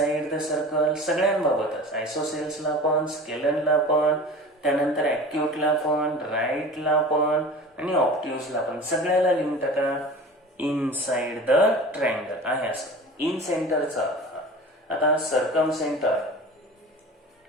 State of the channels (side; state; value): both; normal; correlation 0.37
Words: द सर्कल सगळ्यांबाबतच, आयसोसेल्सला पण, स्केलनला पण, त्यानंतर ऍक्यूटला पण, राईटला पण आणि ऑप्ट्यूजला पण, सगळ्याला लिहून टाका इनसाइड द ट्रायंगल आहे असं. इन सेंटरचा आता सर्कम सेंटर.